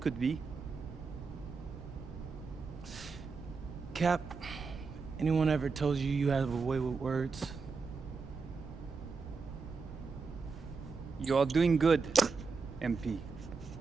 could be. Cap, anyone ever told you you have a way with words? You are doing good, MP.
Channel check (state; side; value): quieter; left; 4.8 dB